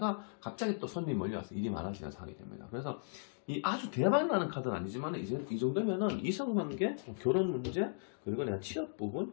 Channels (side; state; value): right; silent; digital silence